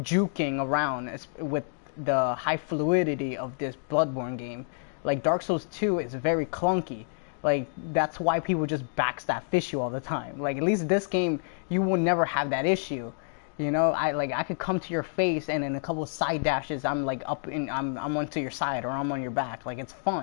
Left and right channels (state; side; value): silent; right; digital silence